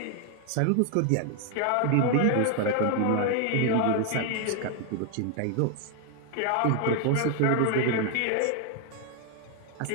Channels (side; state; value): both; different; correlation 0.00